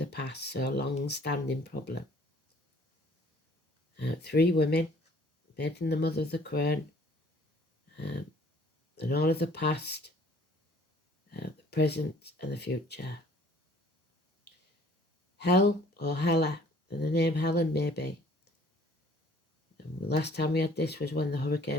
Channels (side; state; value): both; normal; correlation 0.56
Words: past, so a long-standing problem. 3 women, maiden the mother of the crown, and all of the past, the present and the future. Hell or Hella, and the name Helen maybe. And the last time we had this was when the